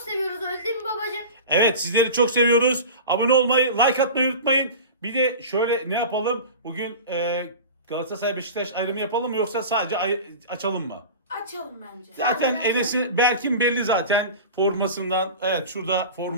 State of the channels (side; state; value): both; inverted; correlation -0.33